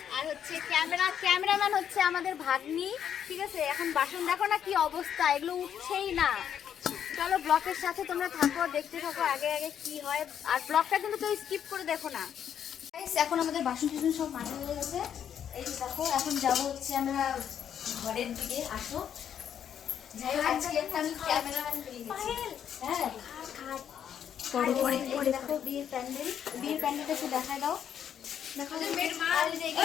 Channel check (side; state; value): right; quieter; 9.0 dB